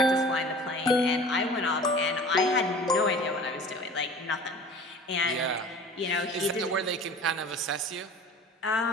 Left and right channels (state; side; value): normal; both; correlation 0.43